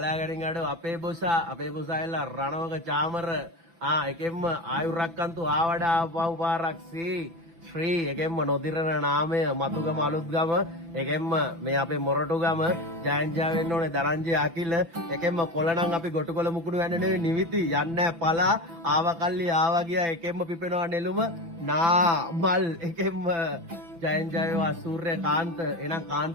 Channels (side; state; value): left; late; 6.0 ms